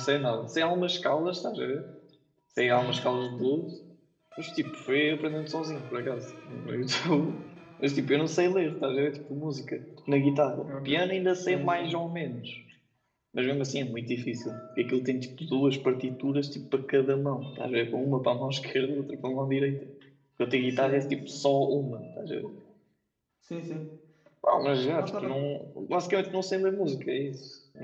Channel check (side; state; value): both; identical; correlation 1.00